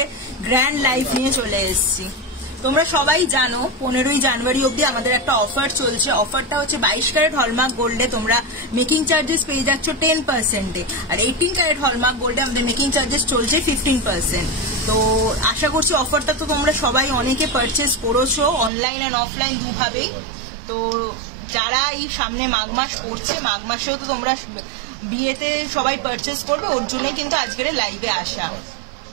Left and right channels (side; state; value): left; drops out; at 18.7 s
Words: গ্র্যান্ড লাইফ নিয়ে চলে এসেছি। তোমরা সবাই জানো 15ই জানুয়ারি অবধি আমাদের একটা অফার চলছে। অফারটা হচ্ছে 22 ক্যারেট হলমার্ক গোল্ডে তোমরা মেকিং চার্জেস পেয়ে যাচ্ছ 10%, আর 18 ক্যারেট হলমার্ক গোল্ডে আমাদের মেকিং চার্জেস চলছে 15%। তো আশা করছি অফারটা তো তোমরা সবাই অনেকে পারচেস করেছো, অনলাইন অ্যান্ড অফলাইন দুভাবেই। তো যারা এই সামনে মাঘ মাস পড়ছে, মাঘ মাসেও তো তোমরা বিয়েতে সবাই পারচেস করবে, ওর জন্যই কিন্তু আজকের লাইভে আসা।